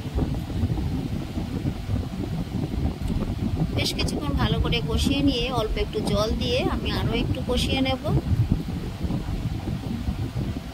বেশ কিছুক্ষণ ভালো করে কষিয়ে নিয়ে অল্প একটু জল দিয়ে আমি আরও একটু কষিয়ে নেব।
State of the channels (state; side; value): identical; both; correlation 1.00